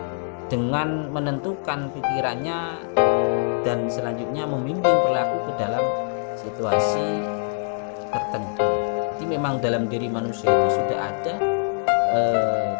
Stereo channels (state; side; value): silent; right; 59 dB below the other